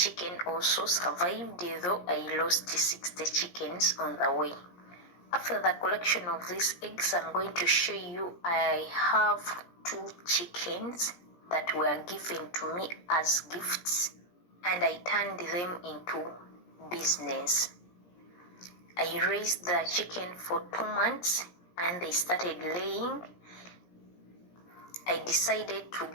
also survived, though I lost 60 chickens on the way. After the collection of these eggs, I'm going to show you I have 2 chickens that were given to me as gifts, and I turned them into business. I raised the chicken for 2 months and they started laying. I decided to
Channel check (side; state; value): right; late; 17 ms